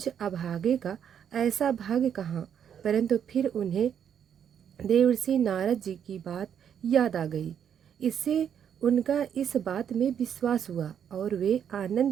अभागे का ऐसा भाग्य कहाँ, परंतु फिर उन्हें देवर्षि नारद जी की बात याद आ गई। इससे उनका इस बात में विश्वास हुआ और वे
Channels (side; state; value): left; quieter; 8.5 dB